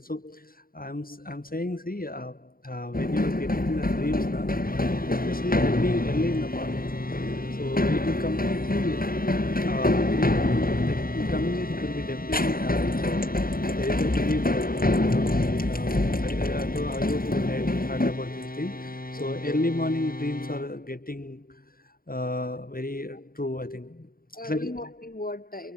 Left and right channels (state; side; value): late; right; 0.42 ms